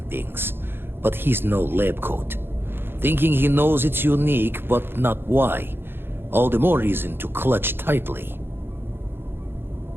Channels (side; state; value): left; late; 0.10 ms